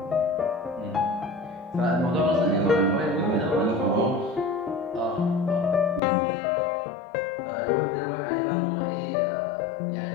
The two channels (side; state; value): right; drops out; at 6.0 s